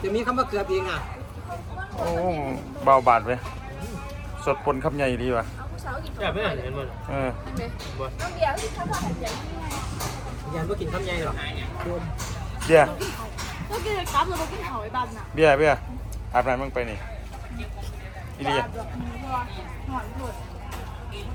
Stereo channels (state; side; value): identical; both; correlation 1.00